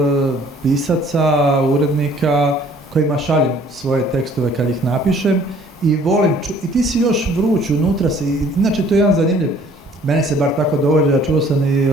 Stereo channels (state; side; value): normal; both; correlation 0.56